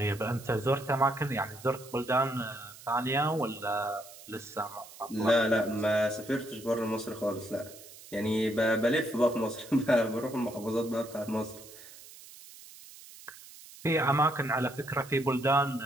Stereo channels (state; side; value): noise; right; hiss, 18 dB below the sound